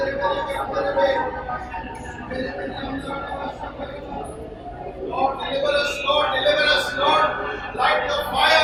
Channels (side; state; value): both; identical; correlation 1.00